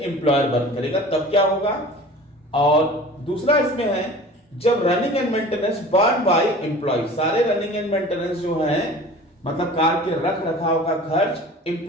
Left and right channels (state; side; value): normal; both; correlation 0.41